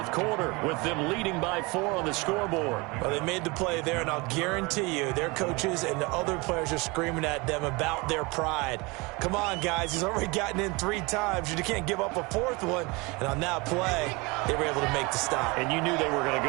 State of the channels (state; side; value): quieter; left; 25.8 dB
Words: quarter, with them leading by 4 on the scoreboard. Well, they made the play there, and I'll guarantee you their coaches and the other players are screaming at them about their pride. Come on, guys. He's already gotten in 3 times. You can't give up a 4th one. And on that play, they were able to make the stop. And you knew they were going to